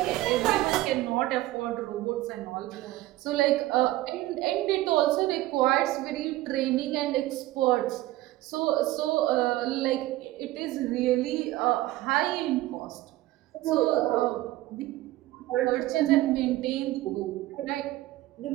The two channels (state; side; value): quieter; left; 16.8 dB